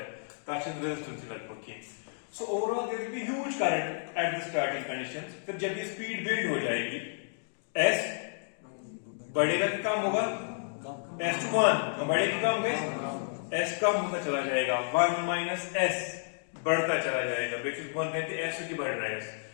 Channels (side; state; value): right; silent; digital silence